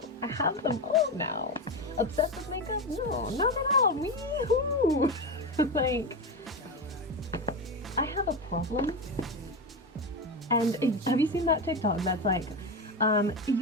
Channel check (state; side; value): normal; both; correlation 0.17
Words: I have them all now. Obsessed with makeup? No, not at all. Wee-hoo! Like, I have a problem. And have you seen that TikTok that's like,